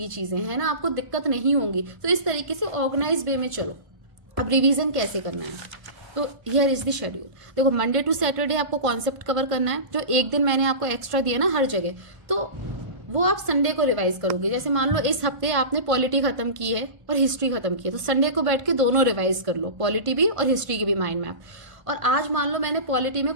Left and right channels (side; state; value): left; late; 1.5 ms